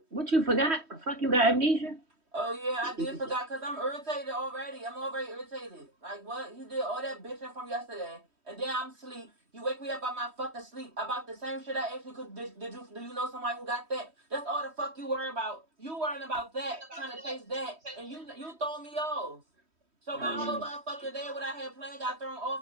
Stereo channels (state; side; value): late; left; 3.1 ms